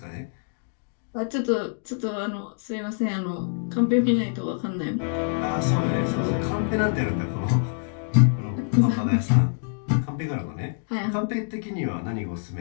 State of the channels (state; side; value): silent; right; digital silence